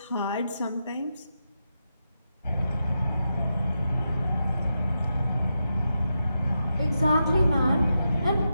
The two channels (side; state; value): both; inverted; correlation -0.87